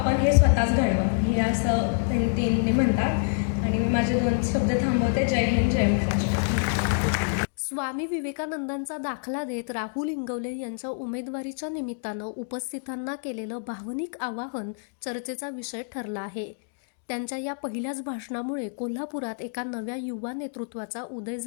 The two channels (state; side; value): silent; right; digital silence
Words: हे स्वतःच घडवा, हे असं त्यांनी म्हणतात. आणि मी माझे 2 शब्द थांबवते. जय हिंद, जय महाराष्ट्र. स्वामी विवेकानंदांचा दाखला देत राहुल इंगवले यांच्या उमेदवारीच्या निमित्तानं उपस्थितांना केलेलं भावनिक आवाहन चर्चेचा विषय ठरला आहे. त्यांच्या या पहिल्याच भाषणामुळे कोल्हापुरात एका नव्या युवा नेतृत्वाचा उदय